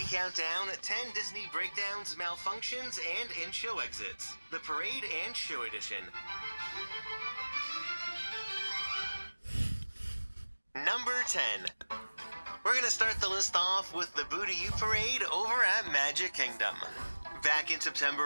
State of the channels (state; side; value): inverted; both; correlation -1.00